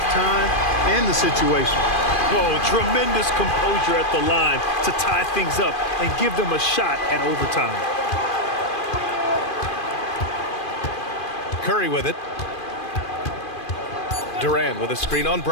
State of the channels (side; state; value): right; late; 2.4 ms